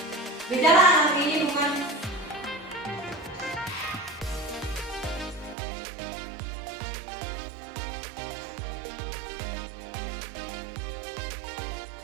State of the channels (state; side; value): drops out; left; at 5.6 s